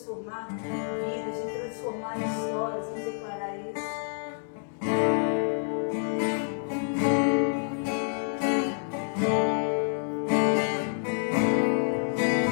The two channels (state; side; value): silent; right; digital silence